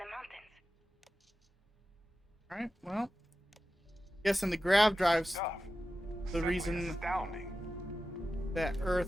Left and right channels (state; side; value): normal; both; correlation 0.93